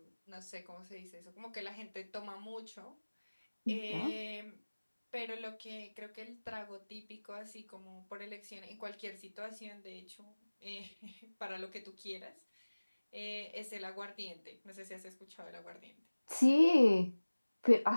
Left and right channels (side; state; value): both; inverted; correlation -1.00